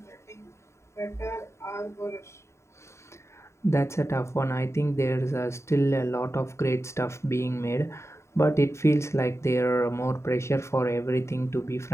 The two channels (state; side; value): late; right; 0.13 ms